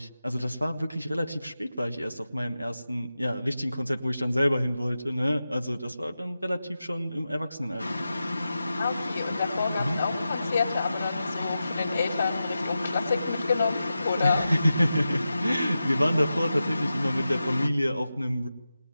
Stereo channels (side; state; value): both; inverted; correlation -0.92